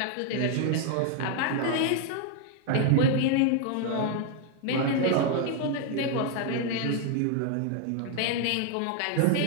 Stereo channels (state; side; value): different; both; correlation 0.00